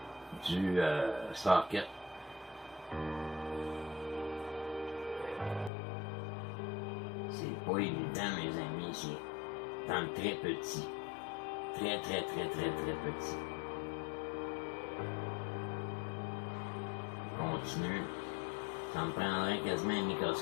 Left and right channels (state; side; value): drops out; right; at 5.7 s